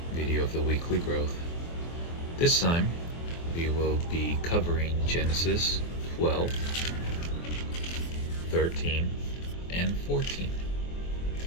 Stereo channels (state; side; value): late; right; 24 ms